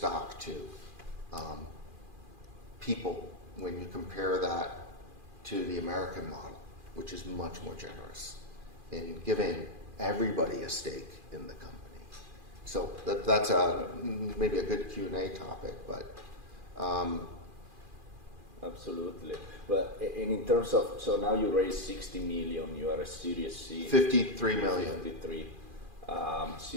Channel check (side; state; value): left; late; 2.4 ms